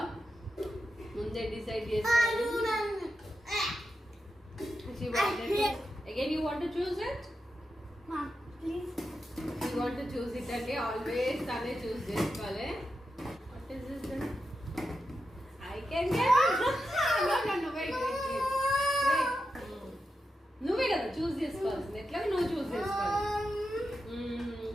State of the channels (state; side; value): normal; both; correlation 0.88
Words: ముందే డిసైడ్ చేసుకోవాలి. She wanted to. Again, you want to choose it? Mom, please. You want to choose it and always tane choose cheskale. What is this then? I can get it. No, wait. No,